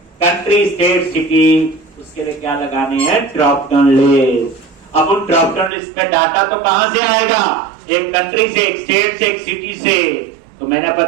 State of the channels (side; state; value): left; drops out; at 5.7 s